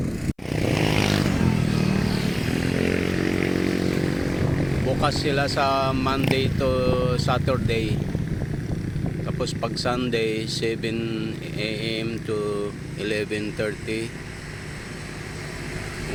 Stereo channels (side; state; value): both; identical; correlation 1.00